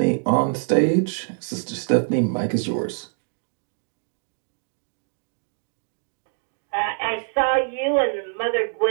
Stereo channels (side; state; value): left; silent; digital silence